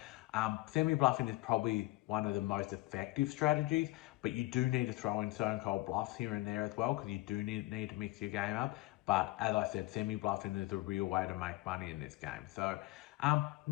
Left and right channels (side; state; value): right; quieter; 20.1 dB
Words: semi-bluffing is probably one of the most effective strategies, but you do need to throw in stone cold bluffs here and there as well, because you do need to mix your game up. But as I said, semi-bluffing is a real way to make money in this game. So